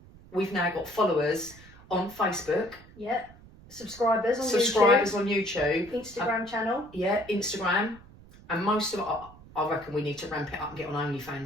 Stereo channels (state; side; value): noise; right; rumble, 22 dB below the sound